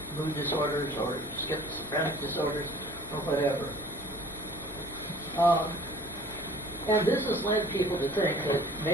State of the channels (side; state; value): both; normal; correlation 0.47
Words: mood disorders or schizophrenic disorders or whatever. And this has led people to think that